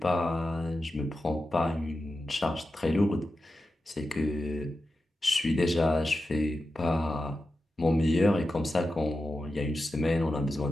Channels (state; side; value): normal; both; correlation 0.91